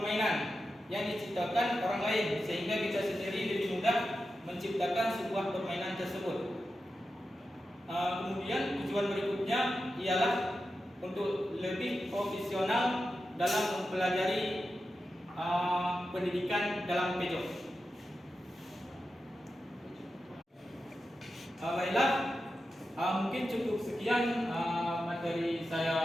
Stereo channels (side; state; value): both; normal; correlation 0.91